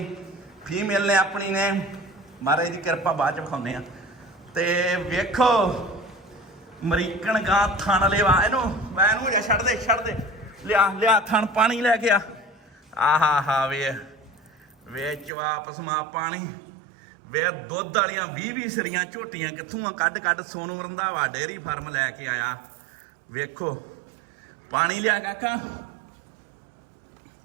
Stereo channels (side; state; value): left; drops out; at 15.3 s